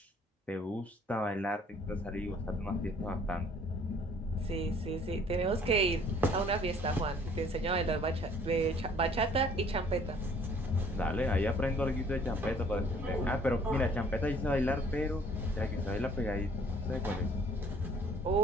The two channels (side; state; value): both; normal; correlation 0.57